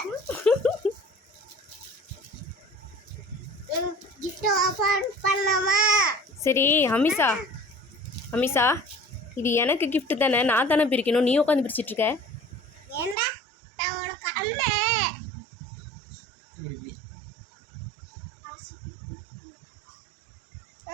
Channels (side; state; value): left; drops out; at 13.2 s